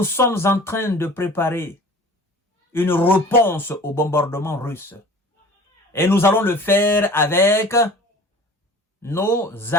sommes en train de préparer une réponse au bombardement russe. Et nous allons le faire avec nos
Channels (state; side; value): normal; both; correlation 0.43